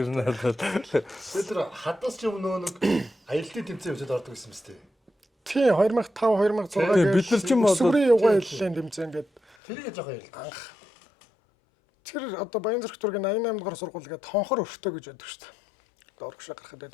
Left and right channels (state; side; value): drops out; right; at 9.6 s